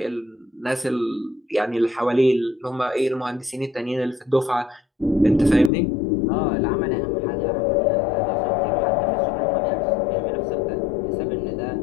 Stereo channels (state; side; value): drops out; right; at 5.7 s